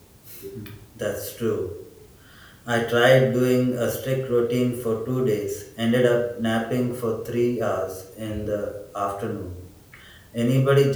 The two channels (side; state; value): both; identical; correlation 1.00